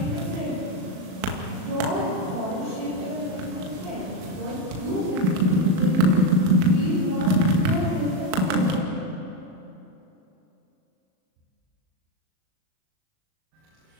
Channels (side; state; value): left; late; 37 ms